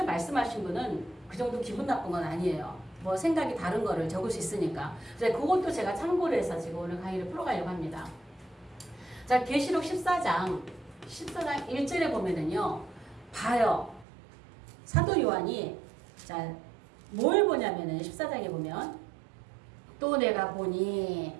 말씀하신 분은 그 정도 기분 나쁜 건 아니에요. 뭐 생각이 다른 거를 적을 수 있으니까. 그래서 그것도 제가 참고를 해서 지금 오늘 강의를 풀어가려고 합니다. 자, 계시록 14장 1절에 보면은요. 봐요. 사도 요한이 자, 뭘 보냐면은 14장에 보면 또 내가 보니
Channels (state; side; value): drops out; left; at 14.1 s